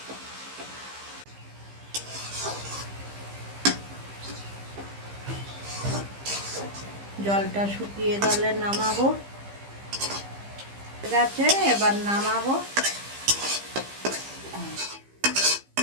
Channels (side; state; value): left; late; 15 ms